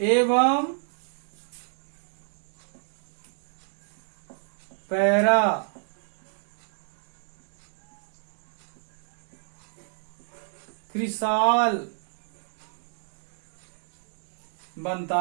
पैरा क्रिसाल बनता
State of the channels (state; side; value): silent; left; digital silence